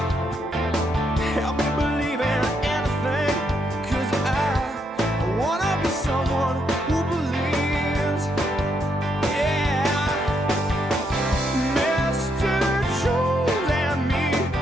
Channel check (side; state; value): both; normal; correlation 0.77